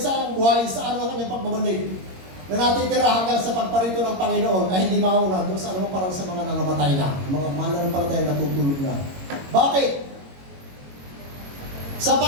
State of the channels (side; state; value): left; late; 22 ms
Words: ang buhay sa ano kanyang pagbabalik na natitira hanggang sa pagparito ng Panginoon ay hindi mauna doon sa anumang parang sa mga nangamatay na, mga mananampalataya na natutulog na. Bakit?